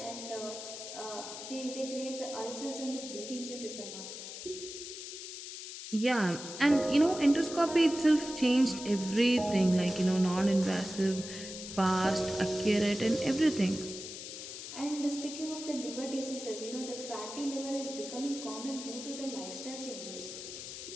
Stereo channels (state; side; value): noise; left; hiss, 9 dB below the sound